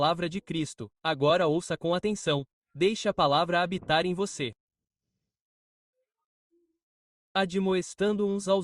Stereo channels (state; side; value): identical; both; correlation 1.00